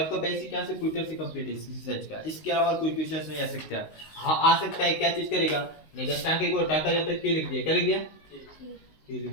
बेसिक यहाँ से क्विटर से कंप्लीट है रिसर्च का इसके अलावा कोई क्वेश्चन नहीं आ सकता हाँ आ सकता है क्या चीज करेगा निर्देशांक को हटाकर जब तक के लिख दिया क्या लिख दिया के लिख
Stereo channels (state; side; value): late; right; 19 ms